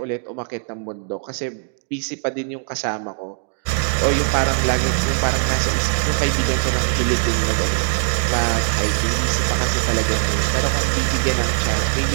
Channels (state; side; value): silent; left; digital silence